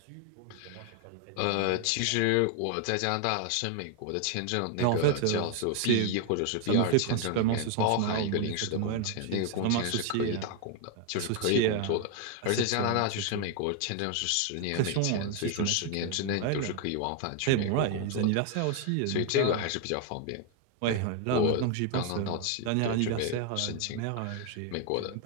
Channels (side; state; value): both; different; correlation 0.01